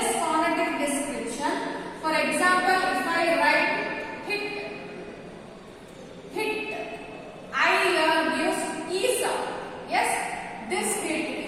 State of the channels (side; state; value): both; identical; correlation 1.00